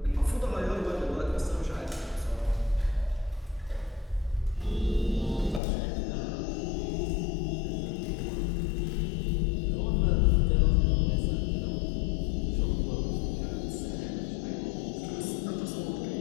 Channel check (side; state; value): right; drops out; at 5.6 s